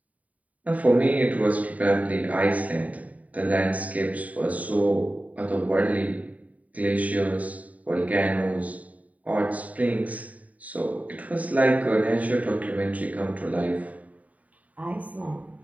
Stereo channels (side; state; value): left; late; 0.070 ms